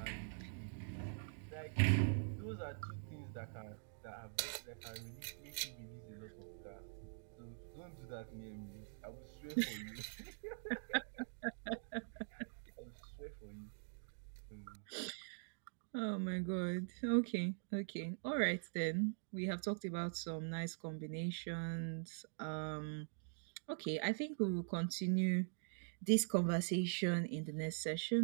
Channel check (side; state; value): left; silent; digital silence